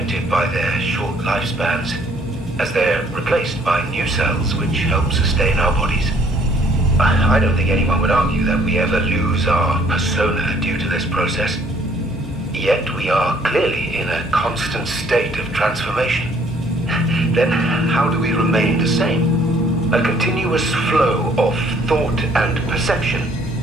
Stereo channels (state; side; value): normal; both; correlation 0.61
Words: by their short lifespans, as they're replaced by new cells which help sustain our bodies. I don't think anyone would argue that we ever lose our persona due to this process. Yet we are clearly in a constant state of transformation. Then how do we remain the same? A continuous flow of thought and perception